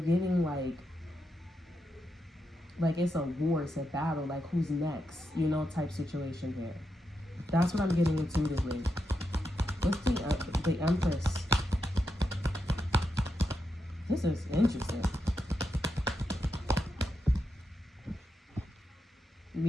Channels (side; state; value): both; normal; correlation 0.85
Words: like it's a war, it's a battle, like who's next, type situation here. That's what I'm getting intuitively. What's the Empress? This is interesting.